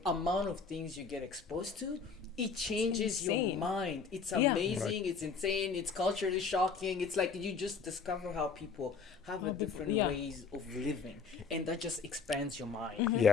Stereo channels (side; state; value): right; quieter; 5.2 dB